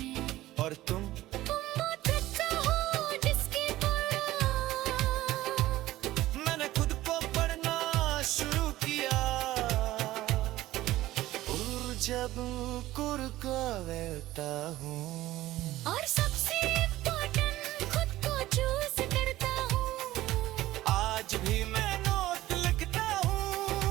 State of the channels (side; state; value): left; quieter; 16.0 dB